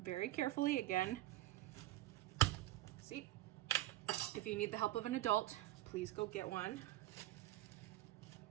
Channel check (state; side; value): quieter; left; 15.7 dB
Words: very carefully again. See? If you need the help of an adult, please go get one.